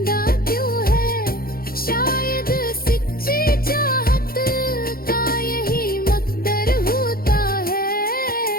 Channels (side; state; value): right; late; 0.43 ms